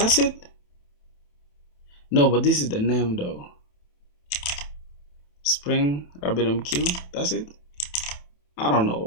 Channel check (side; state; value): right; late; 27 ms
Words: it. No, but this is the name though. Spring RabbitMQ. That's it. I don't